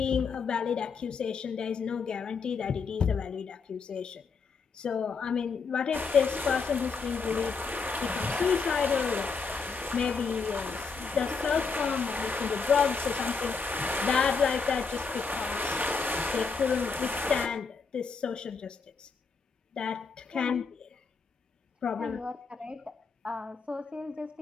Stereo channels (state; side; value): quieter; right; 5.1 dB